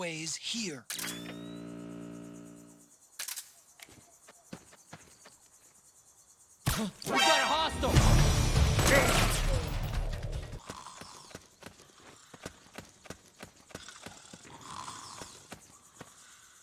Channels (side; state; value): both; identical; correlation 1.00